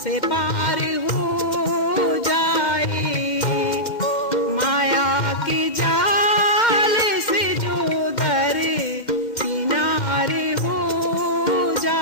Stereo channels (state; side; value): late; right; 2.1 ms